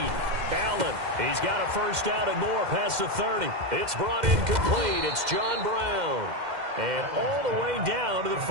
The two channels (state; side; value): late; left; 2.1 ms